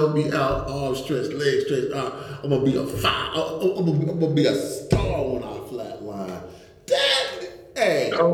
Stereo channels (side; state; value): both; identical; correlation 1.00